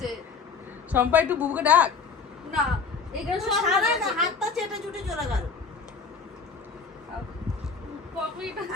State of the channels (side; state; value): right; quieter; 5.2 dB